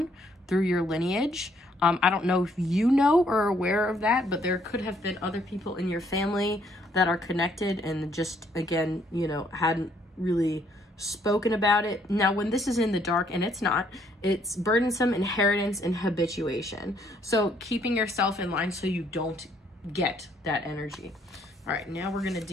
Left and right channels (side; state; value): both; normal; correlation 0.67